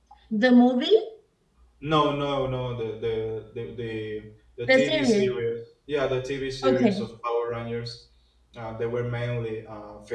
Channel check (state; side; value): identical; both; correlation 1.00